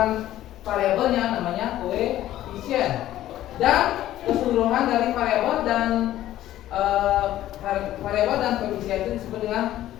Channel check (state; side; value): quieter; right; 13.6 dB